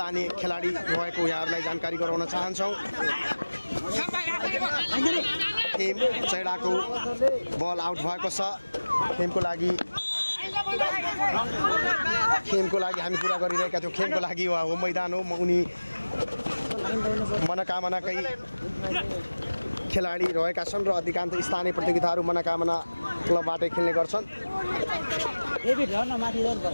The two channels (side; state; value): both; inverted; correlation -1.00